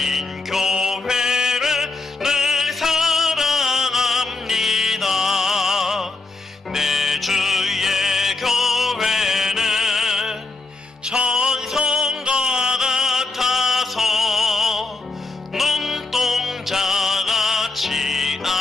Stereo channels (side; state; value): right; quieter; 3.4 dB